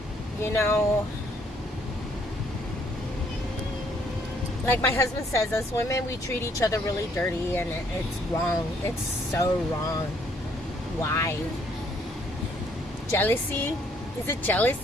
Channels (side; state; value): both; normal; correlation 0.66